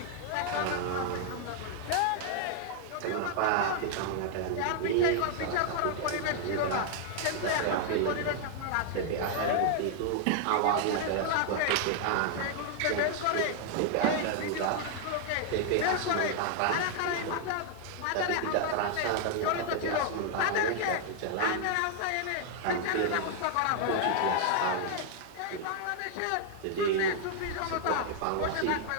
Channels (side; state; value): both; different; correlation 0.00